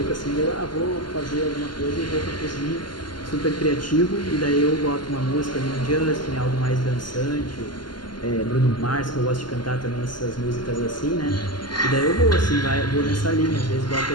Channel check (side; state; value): right; late; 0.71 ms